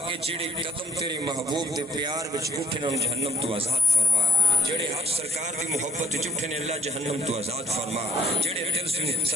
کے جڑے قدم تیرے محبوب دے پیار وچ اٹھن ان جہنم تو آزاد فرما جڑے حق سرکار دی محبت وچ اٹھن اللہ جہنم تو آزاد فرما جڑے دل سے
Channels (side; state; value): both; normal; correlation 0.62